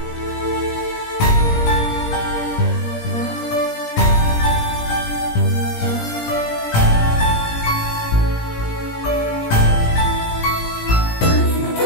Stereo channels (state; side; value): late; right; 17 ms